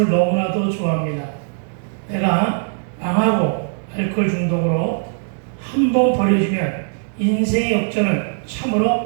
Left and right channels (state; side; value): silent; left; digital silence